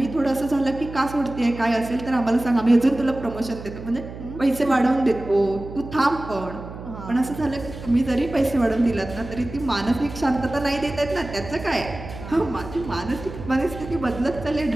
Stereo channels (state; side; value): noise; right; hum, 12 dB below the sound